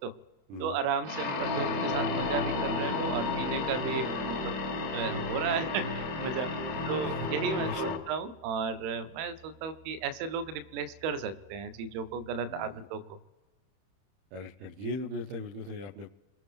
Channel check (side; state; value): left; late; 31 ms